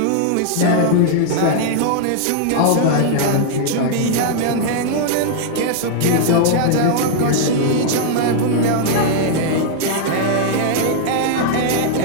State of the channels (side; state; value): both; different; correlation -0.01